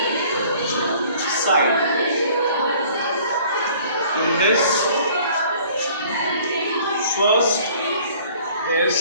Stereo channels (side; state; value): both; inverted; correlation -0.53